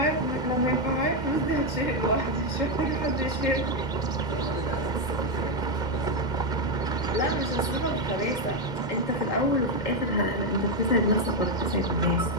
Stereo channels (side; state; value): right; late; 2.1 ms